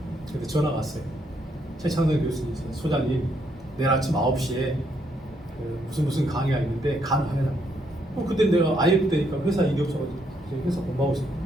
그래서 전화가 왔어요. 최창선 교수님, 소장님, 내일 아침 9시에 그 무슨 강의가 있는데 가능하냐고. 그때 내가 IF 때니까 회사 일이 없어가지고 회사 공부하고 있었는데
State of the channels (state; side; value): normal; both; correlation 0.74